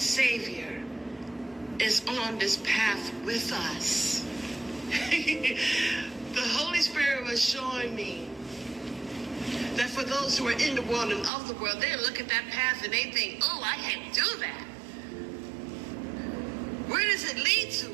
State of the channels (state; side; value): drops out; left; at 11.3 s